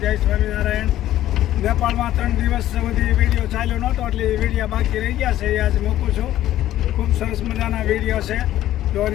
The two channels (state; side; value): quieter; right; 13.4 dB